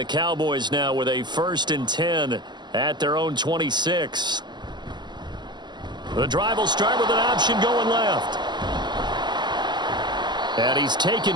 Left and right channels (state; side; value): late; left; 0.21 ms